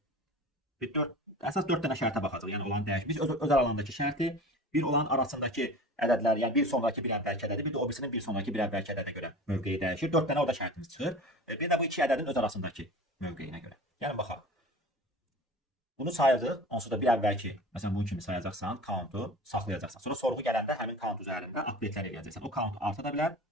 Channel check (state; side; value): normal; both; correlation 0.37